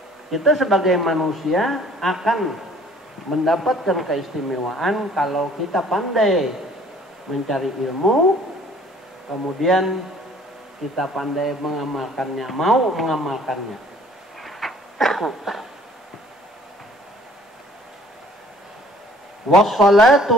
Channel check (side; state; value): both; normal; correlation 0.55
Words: Kita sebagai manusia akan mendapatkan keistimewaan kalau kita pandai mencari ilmu, kemudian kita pandai mengamalkannya, mau mengamalkannya.